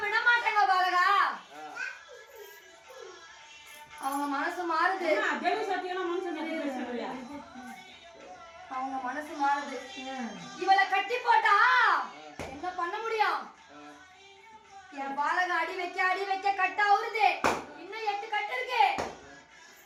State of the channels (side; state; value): both; identical; correlation 1.00